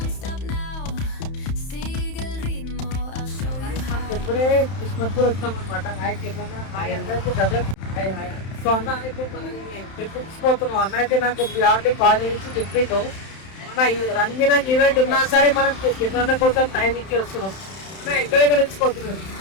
ఇప్పుడే కిస్మత్పూర్ వచ్చాం అనమాట. సో అన్న అయితే మనం ట్రిప్ తీసుకుపోతున్నాం. అన్న అయితే నాకు ఆల్రెడీ కాల్ చేసి చెప్పిండు, మన ఈ రంగిన ఈవెంట్ ఉన్నా సరే మనం కింద కోసం టైం ఇచ్చి వస్తున్నాం. ఎక్కడెక్కడ తీసుకుపోతున్నాం,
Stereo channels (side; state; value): right; late; 31 ms